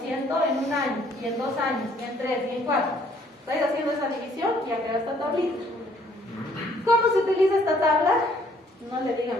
en un año, y en 2 años, y en 3, y en 4. Estáis haciendo esa división y ya queda esta tablita. ¿Cómo se utiliza esta tabla? No le digan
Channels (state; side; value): normal; both; correlation 0.63